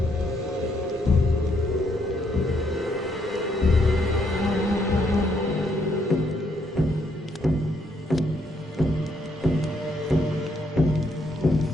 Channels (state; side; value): normal; both; correlation 0.73